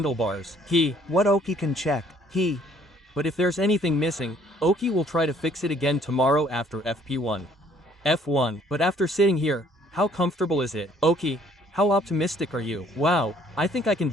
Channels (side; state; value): both; normal; correlation 0.61